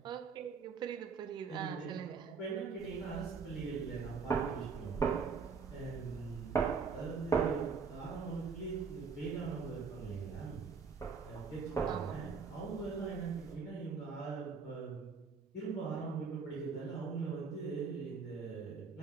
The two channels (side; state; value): left; quieter; 5.4 dB